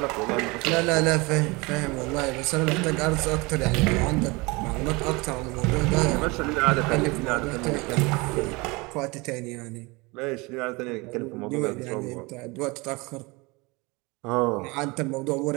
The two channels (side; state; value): left; quieter; 25.4 dB